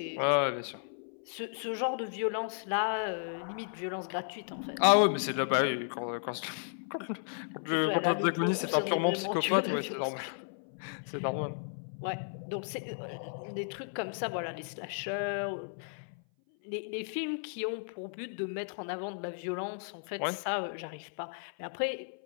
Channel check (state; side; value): silent; right; 55 dB below the other